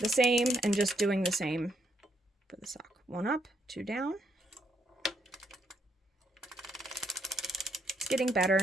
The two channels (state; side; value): normal; both; correlation 0.74